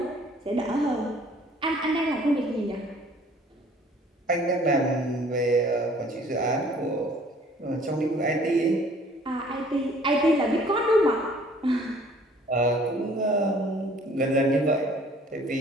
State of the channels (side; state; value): both; normal; correlation 0.55